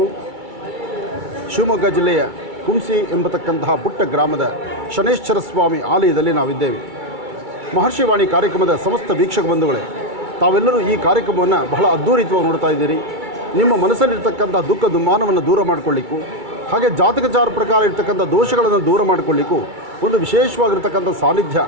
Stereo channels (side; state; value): left; late; 2.3 ms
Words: ಶಿವಮೊಗ್ಗ ಜಿಲ್ಲೆಯ ಕುಂಸಿ ಎಂಬತಕ್ಕಂತಹ ಪುಟ್ಟ ಗ್ರಾಮದ ಶನೈಶ್ಚರ ಸ್ವಾಮಿ ಆಲಯದಲ್ಲಿ ನಾವಿದ್ದೇವೆ. ಮಹರ್ಷಿವಾಣಿ ಕಾರ್ಯಕ್ರಮದ ಸಮಸ್ತ ವೀಕ್ಷಕ ಬಂಧುಗಳೇ, ತಾವೆಲ್ಲರೂ ಈ ಕಾರ್ಯಕ್ರಮವನ್ನು ಬಹಳ ಅದ್ಧೂರಿತವಾಗಿ ನೋಡ್ತಾ ಇದ್ದೀರಿ. ನಿಮ್ಮ ಮನಸ್ಸಲ್ಲಿರ್ತಕ್ಕಂಥ ದುಃಖ ದುಮ್ಮಾನವನ್ನು ದೂರ ಮಾಡಿಕೊಳ್ಳಿಕ್ಕೂ, ಹಾಗೆ ಜಾತಕಚಾರ ಪ್ರಕಾರ ಇರ್ತಕ್ಕಂಥ ದೋಷಗಳನ್ನು ದೂರ ಮಾಡಿಕೊಳ್ಳಿಕ್ಕೂ ಒಂದು ವಿಶೇಷವಾಗಿರ್ತಕ್ಕಂಥ ಸಾನ್ನಿಧ್ಯ,